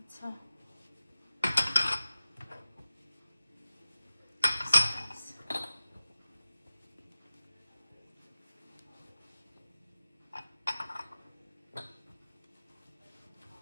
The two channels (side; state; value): both; inverted; correlation -0.93